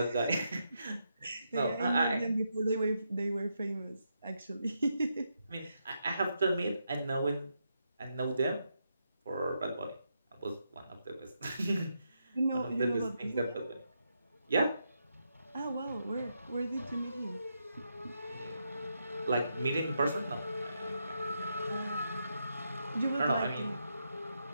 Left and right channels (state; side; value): inverted; both; correlation -0.82